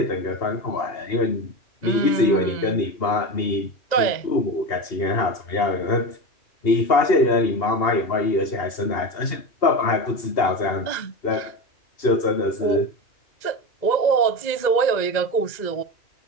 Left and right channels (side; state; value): right; late; 2.0 ms